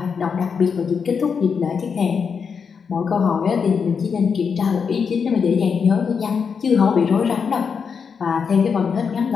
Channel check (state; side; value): quieter; right; 6.1 dB